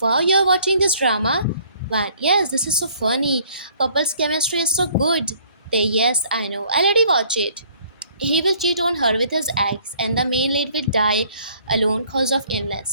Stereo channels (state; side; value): inverted; both; correlation -0.60